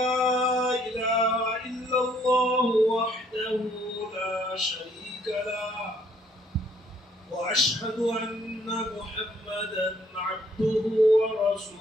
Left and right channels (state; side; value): normal; both; correlation 0.65